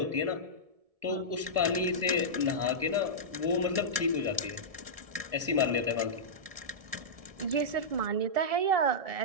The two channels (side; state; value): left; late; 1.7 ms